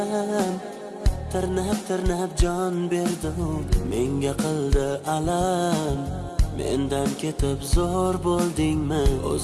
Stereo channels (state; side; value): identical; both; correlation 1.00